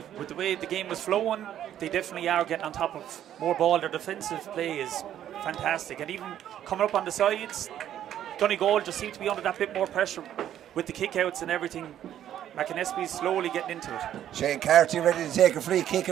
With the way the game was flowing, they definitely are getting on top of more ball. Their defensive play is fantastic. And even coming up on the sides, Donegal just seemed to be under that bit more pressure with the kickouts and everything. McAnespies slowly getting into it. Shane Carty ready to take a free kick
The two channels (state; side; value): quieter; left; 11.0 dB